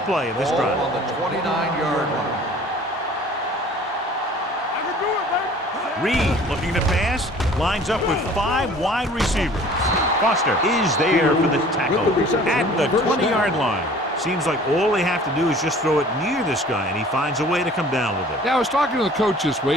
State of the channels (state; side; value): normal; both; correlation 0.49